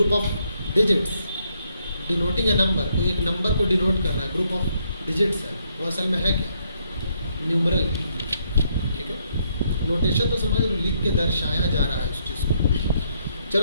of digits denoting a number, कोई एक नंबर को डिनोट कर रहा है, ग्रुप ऑफ डिजिट्स है, वो असल में है क्या? न्यूमरल, ठीक है। नोटेशन तो समझ लो, लिख के दर्शाया जा रहा है उस चीज़ को।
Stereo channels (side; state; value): both; inverted; correlation -0.73